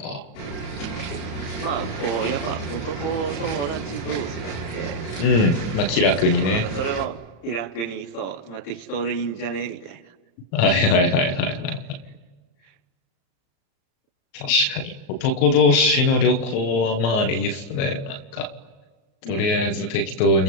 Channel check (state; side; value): late; right; 35 ms